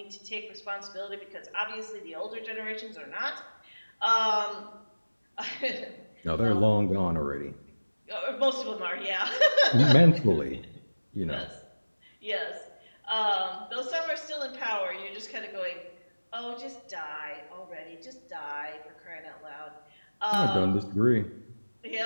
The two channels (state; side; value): inverted; both; correlation -1.00